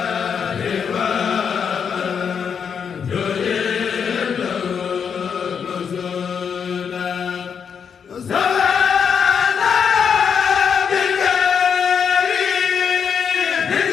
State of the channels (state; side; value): quieter; right; 6.9 dB